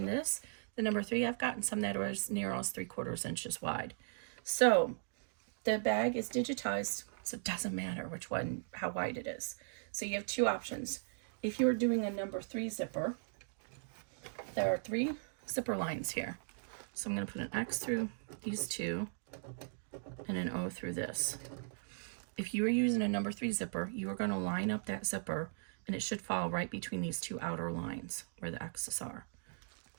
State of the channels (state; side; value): silent; left; digital silence